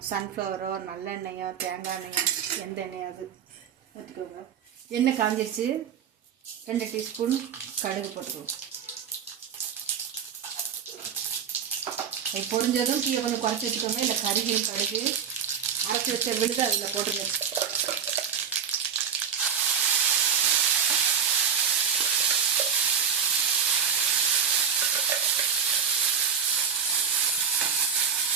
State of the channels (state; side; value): quieter; left; 7.4 dB